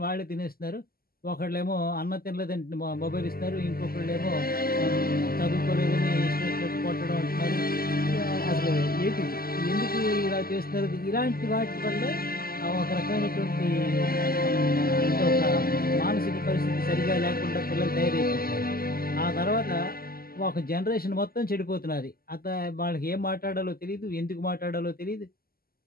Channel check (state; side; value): late; right; 0.43 ms